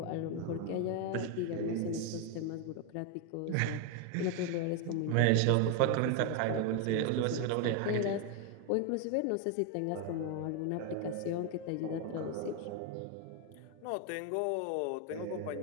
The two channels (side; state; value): both; different; correlation 0.01